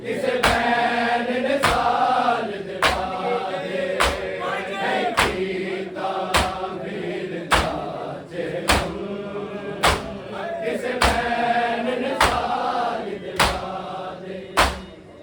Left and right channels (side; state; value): both; identical; correlation 1.00